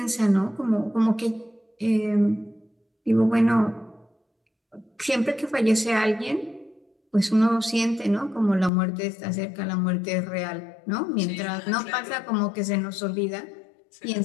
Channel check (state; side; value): drops out; right; at 8.7 s